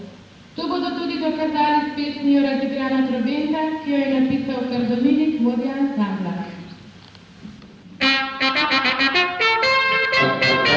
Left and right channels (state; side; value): identical; both; correlation 1.00